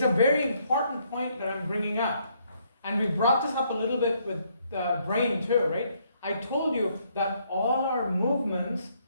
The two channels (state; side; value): inverted; both; correlation -0.70